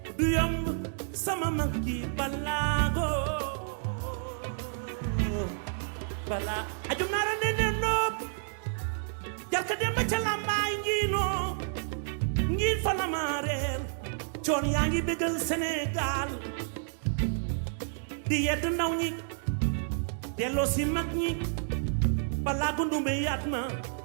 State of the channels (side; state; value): left; silent; digital silence